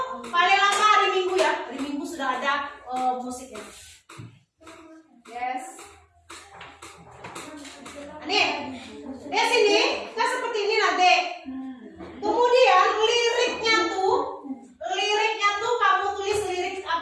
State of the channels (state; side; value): identical; both; correlation 1.00